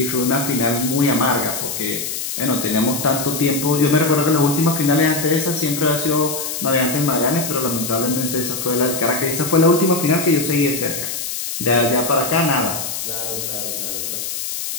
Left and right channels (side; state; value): left; noise; hiss, 5 dB below the sound